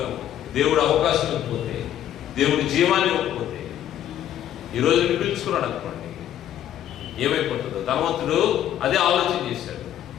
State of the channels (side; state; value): right; quieter; 11.2 dB